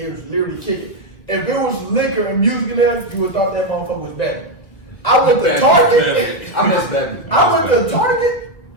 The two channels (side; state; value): right; late; 1.7 ms